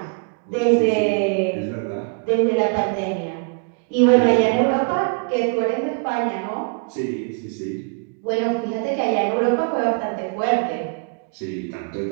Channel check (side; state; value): left; quieter; 39.5 dB